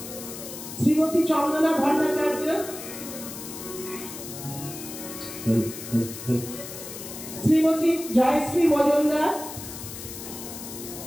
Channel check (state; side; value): noise; left; hiss, 11 dB below the sound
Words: শ্রীমতী চন্দনা ভট্টাচার্য, শ্রীমতী জয়শ্রী মজুমদার,